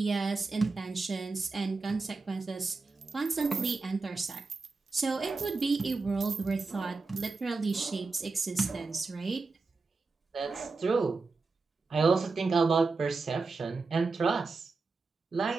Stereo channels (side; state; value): left; quieter; 4.0 dB